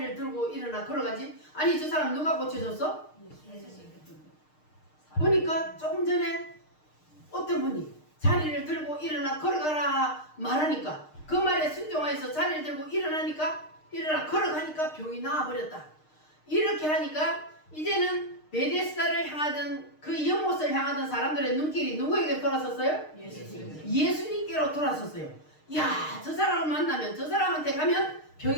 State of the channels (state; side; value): late; right; 6.5 ms